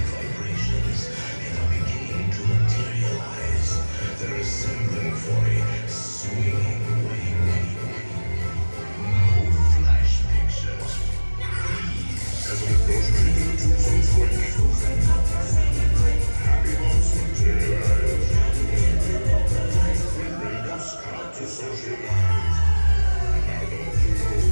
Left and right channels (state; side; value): inverted; both; correlation -1.00